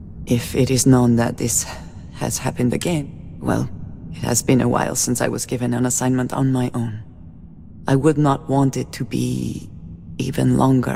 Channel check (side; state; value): both; identical; correlation 1.00